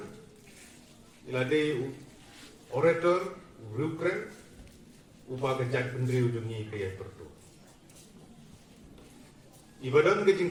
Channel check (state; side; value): identical; both; correlation 1.00